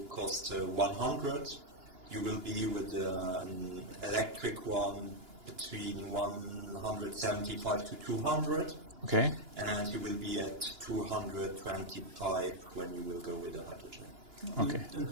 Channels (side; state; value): left; late; 2.9 ms